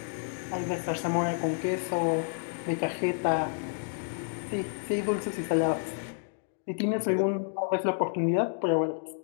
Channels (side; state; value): right; silent; digital silence